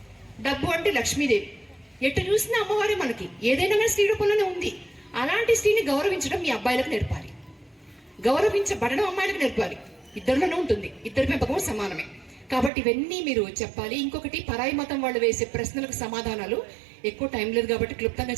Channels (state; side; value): drops out; left; at 12.7 s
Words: డబ్బు అంటే లక్ష్మీదేవి. ఎటు చూసినా అమ్మవారే మనకి. ఏదైనా కానీ స్త్రీ రూపంలోనే ఉంది. అలాంటి స్త్రీని గౌరవించడం మీ అబ్బాయిలకు నేర్పాలి, గౌరవించబడడం అమ్మాయిలకు నేర్పాలి. ఇద్దరిలోనే ఉంటుంది, ఇద్దరి పెంపకం సమానమే. కాబట్టి ఇవన్నీ మీరు చెప్పాలి. ఇంకొకటి, పరాయి మతం వాళ్ళు వేసే ప్రశ్నలకు సమాధానాలు. ఎక్కువ టైం లేదు కాబట్టి క్లుప్తంగా